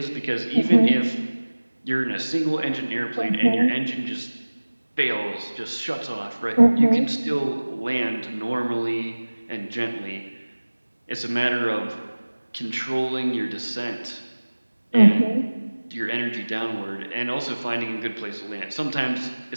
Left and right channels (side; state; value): both; inverted; correlation -1.00